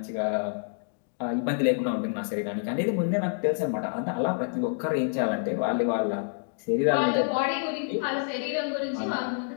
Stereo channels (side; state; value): right; silent; digital silence